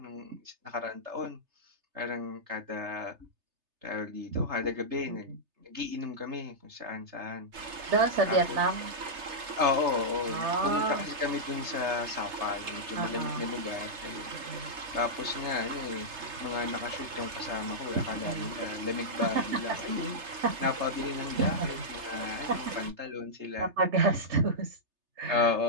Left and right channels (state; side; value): late; left; 3.3 ms